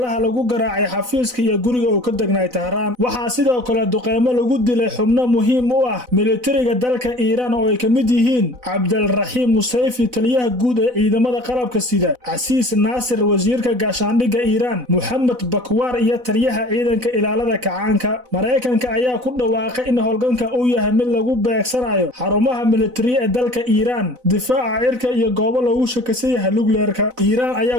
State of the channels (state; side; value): late; left; 4.0 ms